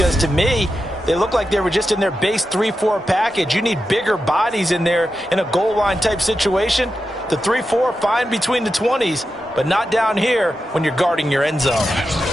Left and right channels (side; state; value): both; normal; correlation 0.90